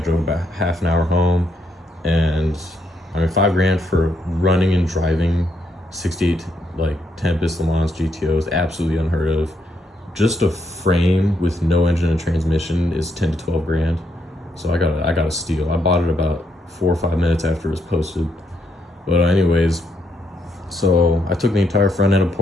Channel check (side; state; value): both; normal; correlation 0.76